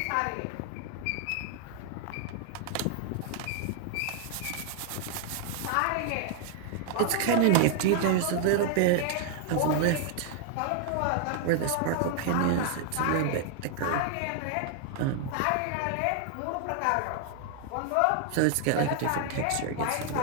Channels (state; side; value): different; both; correlation 0.00